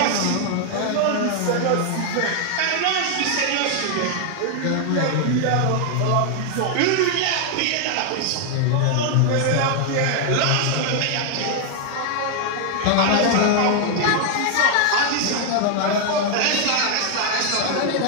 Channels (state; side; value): different; both; correlation 0.00